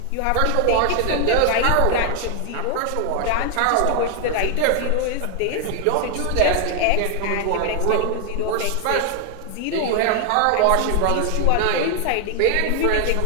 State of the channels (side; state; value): both; different; correlation 0.01